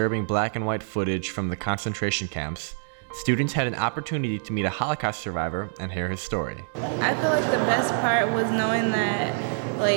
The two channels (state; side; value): silent; left; digital silence